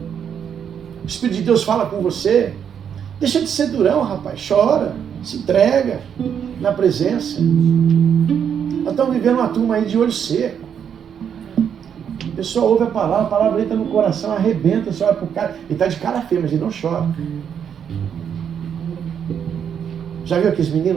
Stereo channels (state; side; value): quieter; left; 8.1 dB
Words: o Espírito de Deus fala com você. Deixa de ser durão, rapaz. Chora, se entrega na presença. Nós estamos vivendo uma turma aí de olho seco. A pessoa ouve a palavra entra no coração, arrebenta, você olha pro cara, ele está de cara feia, mas ele não chora. Já viu aqueles